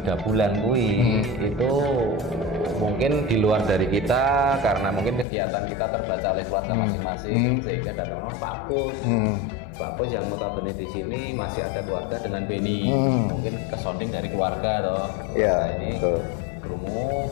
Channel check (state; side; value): drops out; right; at 5.2 s